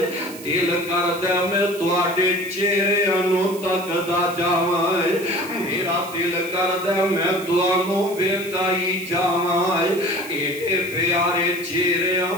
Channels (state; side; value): noise; right; hiss, 16 dB below the sound